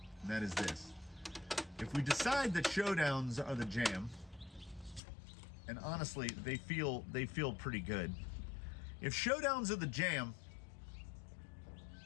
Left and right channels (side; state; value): right; drops out; at 5.0 s